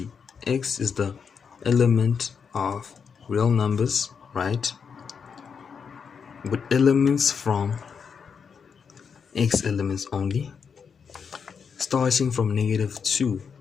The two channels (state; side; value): quieter; right; 6.3 dB